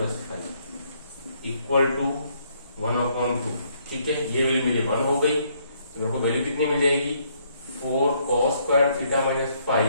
phi equal to 1/2. ठीक है, ये वैल्यू मेरी 1 हो गई. तो मेरे को वैल्यू कितनी मिल जाएगी 4 cos square theta minus phi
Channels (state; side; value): inverted; both; correlation -0.69